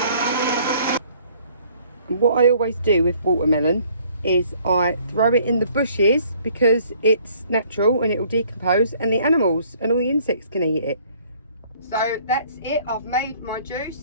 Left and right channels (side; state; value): both; inverted; correlation -0.59